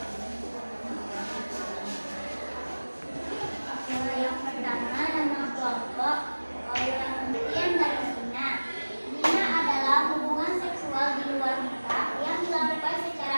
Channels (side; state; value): both; inverted; correlation -1.00